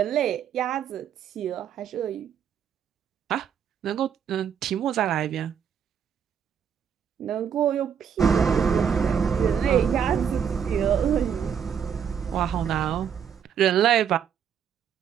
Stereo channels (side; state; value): left; quieter; 8.0 dB